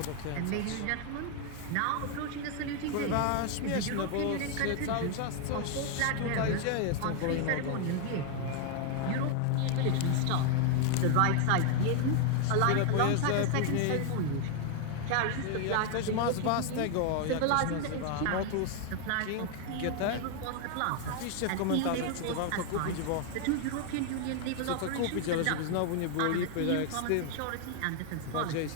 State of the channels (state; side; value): different; both; correlation 0.00